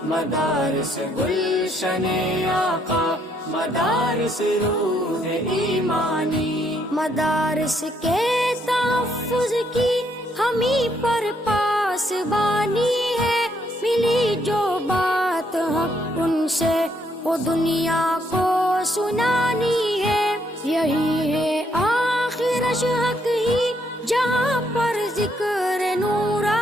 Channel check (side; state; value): both; normal; correlation 0.72